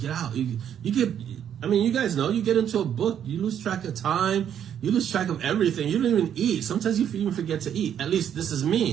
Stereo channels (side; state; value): left; quieter; 9.3 dB